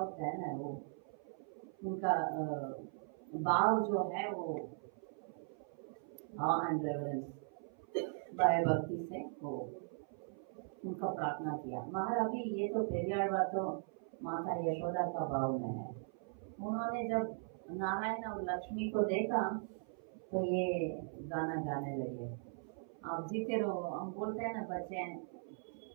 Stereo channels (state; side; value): silent; left; 52 dB below the other